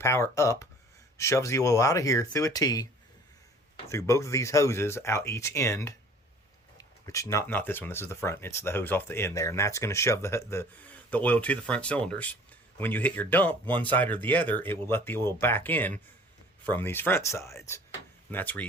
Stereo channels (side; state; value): both; normal; correlation 0.50